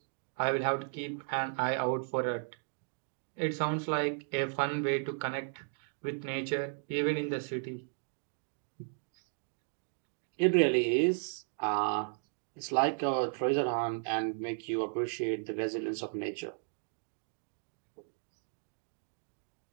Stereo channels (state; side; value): silent; left; digital silence